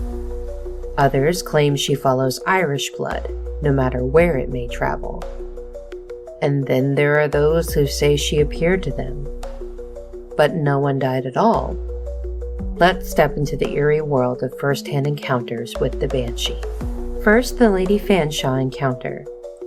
Others claim she follows Irish blood, no matter where it may travel. And then there are those who say she appeared to them, but no one died at all. Let's step into the eerie world of first-hand encounters with the Banshee. First, the Lady Fanshawe encounter,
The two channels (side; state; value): both; identical; correlation 1.00